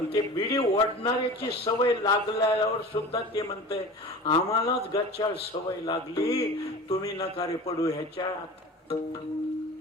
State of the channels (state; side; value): normal; both; correlation 0.36